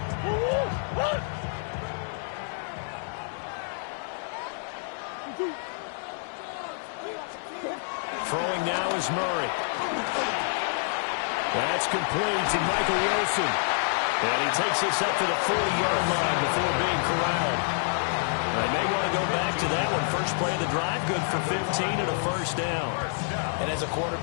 Throwing now is Murray. That's complete to Michael Wilson. And he takes this up to the 40-yard line before being corralled. They may want to go back to that one. First play of the drive, good for 15 and a first down. And as a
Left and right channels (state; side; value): silent; right; digital silence